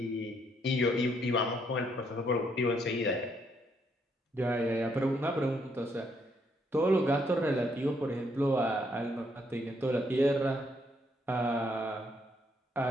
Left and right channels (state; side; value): normal; both; correlation 0.72